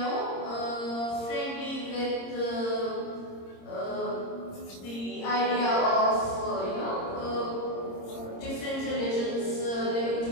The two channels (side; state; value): right; late; 26 ms